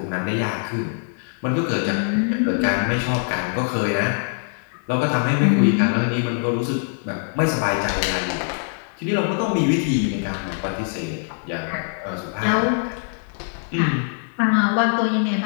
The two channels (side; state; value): right; silent; 61 dB below the other